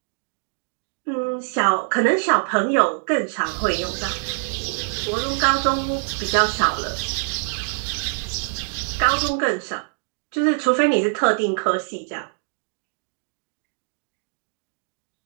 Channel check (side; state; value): left; silent; digital silence